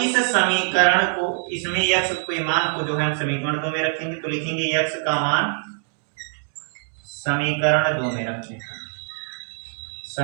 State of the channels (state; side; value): silent; left; 60 dB below the other